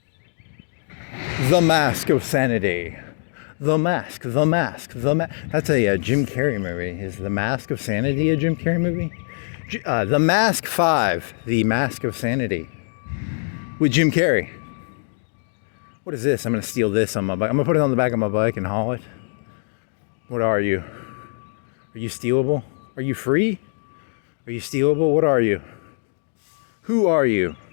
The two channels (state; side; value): silent; right; digital silence